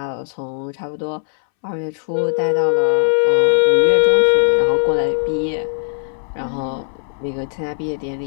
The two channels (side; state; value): right; silent; 66 dB below the other